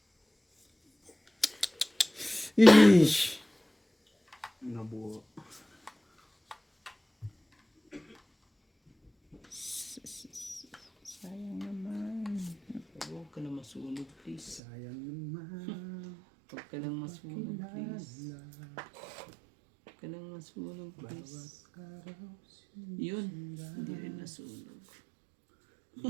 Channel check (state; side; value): drops out; left; at 14.6 s